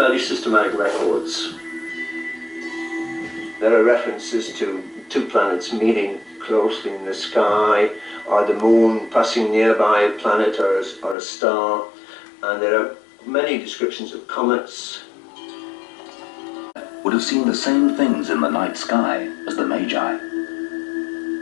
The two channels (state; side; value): drops out; right; at 11.2 s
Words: systematic records. There are references to two planets meeting closely in the sky, or the moon passing nearby a planet or a star, and there are many descriptions of comets. Would have seen the same things in the night sky as the Magi.